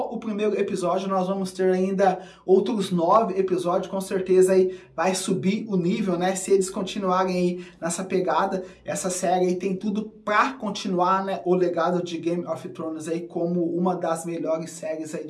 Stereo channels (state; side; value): identical; both; correlation 1.00